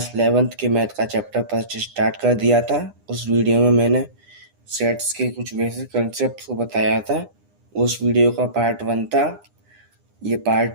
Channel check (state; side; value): late; left; 9.9 ms